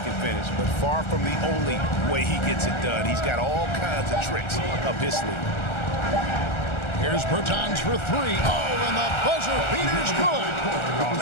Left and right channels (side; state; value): right; late; 1.3 ms